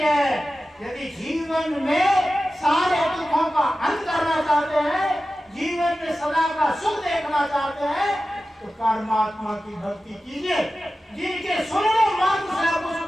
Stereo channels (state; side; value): normal; both; correlation 0.94